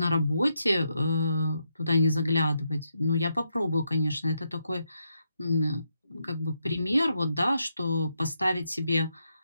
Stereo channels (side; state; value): both; inverted; correlation -0.81